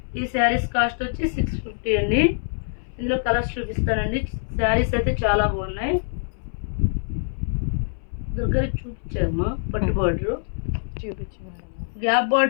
ఈ శారీస్ కాస్ట్ వచ్చి 650 అండి. ఇందులో కలర్స్ చూపిస్తానండి. శారీస్ అయితే చాలా బాగున్నాయి. దగ్గరికి చూపించామా పట్టు బార్డర్, గ్యాప్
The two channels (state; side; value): silent; right; 60 dB below the other